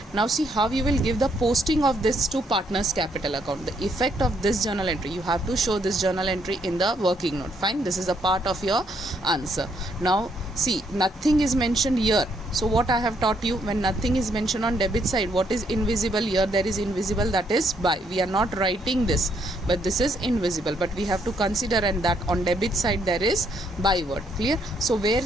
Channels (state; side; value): normal; both; correlation 0.72